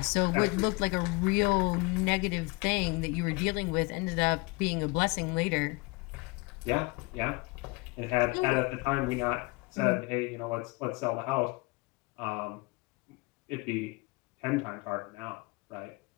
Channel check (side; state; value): right; quieter; 26.4 dB